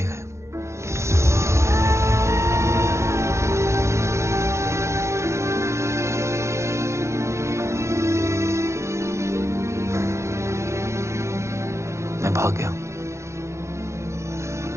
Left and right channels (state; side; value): late; left; 0.14 ms